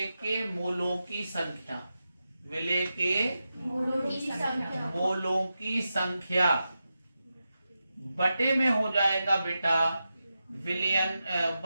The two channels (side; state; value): both; inverted; correlation -0.90